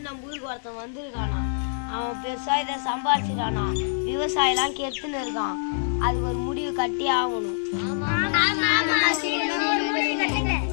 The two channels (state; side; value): silent; right; digital silence